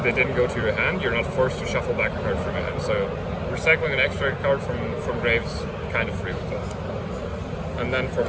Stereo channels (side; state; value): both; identical; correlation 1.00